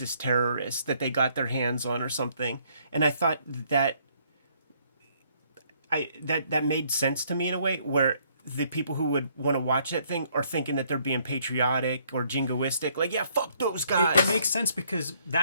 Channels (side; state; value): both; inverted; correlation -0.66